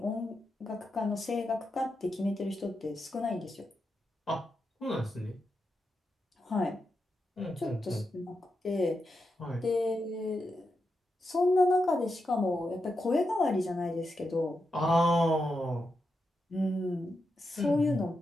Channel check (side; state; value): both; normal; correlation 0.86